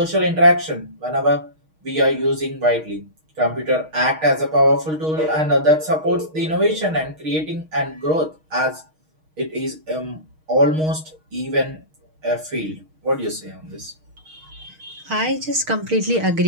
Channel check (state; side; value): late; left; 6.4 ms